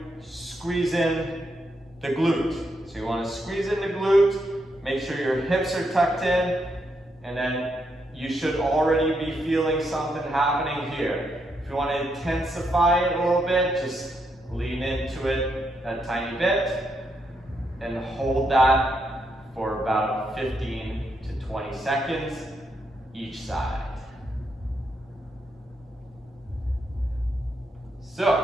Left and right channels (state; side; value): normal; both; correlation 0.79